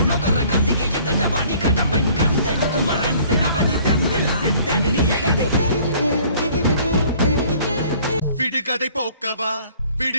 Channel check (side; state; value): both; inverted; correlation -0.55